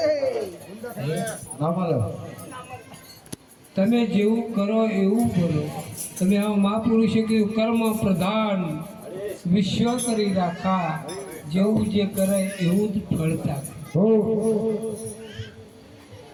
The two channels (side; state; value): both; identical; correlation 1.00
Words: ના મળે. તમે જેવું કરો એવું બોલો. તમે આ મહાપુરુષે કીધું કર્મ પ્રધાન વિશ્વ કરી રાખા, જેવું જે કરે એવું જ ફળતા.